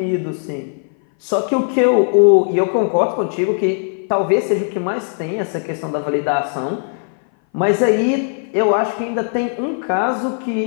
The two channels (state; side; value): silent; right; 59 dB below the other